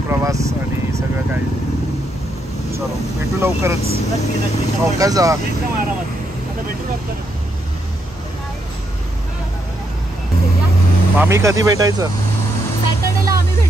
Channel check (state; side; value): normal; both; correlation 0.78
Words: आणि सगळं काही. चलो भेटू लवकरच. नक्की नक्की. चौकात जा. एकदम आरामात. आता भेटू नंतर. मामी कधी भेटायचं? सॅटर्डेला आम्ही